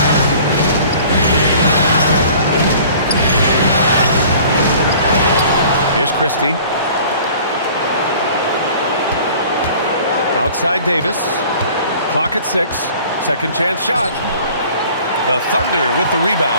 Here's Christie. Outside Davis. Clock at 6. Second chance shot. The Thunder with the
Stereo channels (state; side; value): inverted; both; correlation -0.48